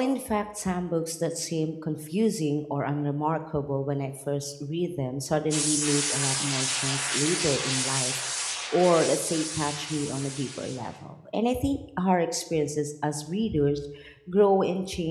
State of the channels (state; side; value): identical; both; correlation 1.00